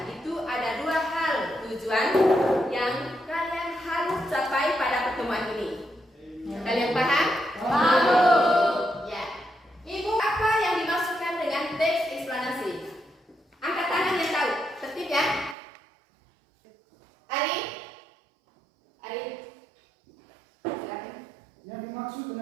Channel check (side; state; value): left; drops out; at 15.6 s